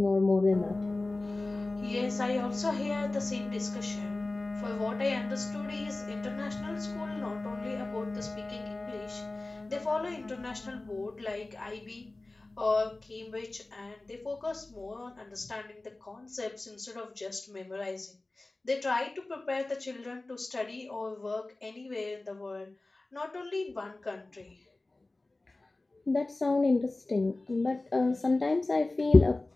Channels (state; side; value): quieter; right; 3.0 dB